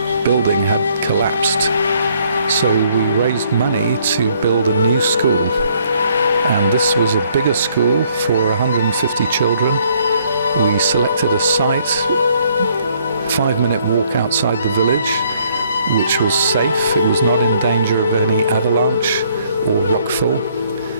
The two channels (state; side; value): inverted; both; correlation -0.65